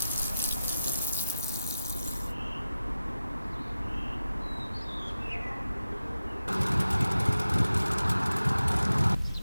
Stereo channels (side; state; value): both; inverted; correlation -0.93